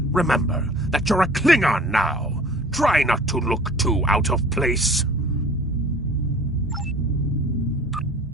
remember that you're a Klingon now. Try not to look too out of place.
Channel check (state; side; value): normal; both; correlation 0.46